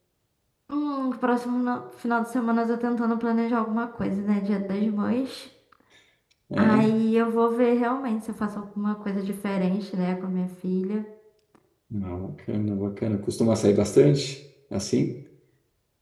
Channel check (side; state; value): both; identical; correlation 1.00